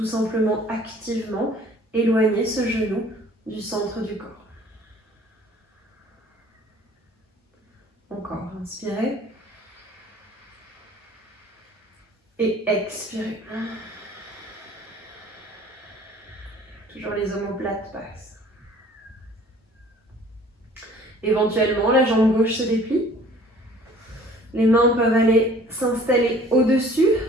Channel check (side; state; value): both; normal; correlation 0.52